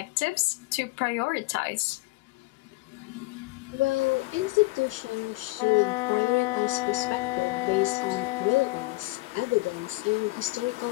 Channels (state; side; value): quieter; right; 22.4 dB